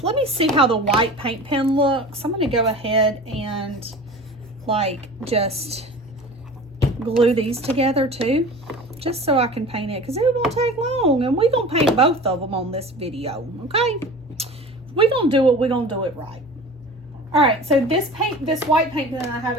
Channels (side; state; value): both; normal; correlation 0.38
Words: Let me see how the white paint pen looks. I'm going to go ahead and like just glue these together too, just so I can paint it, because it won't take long, and we're going to paint both of them on this video, okay? We're going to do it. We're going to do it right. All right, so this white paint pen I have